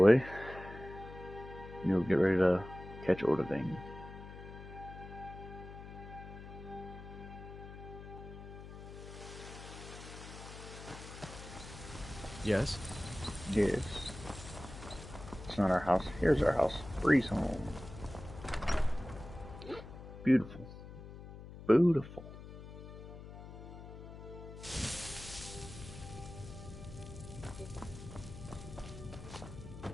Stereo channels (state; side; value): noise; left; hum, 13 dB below the sound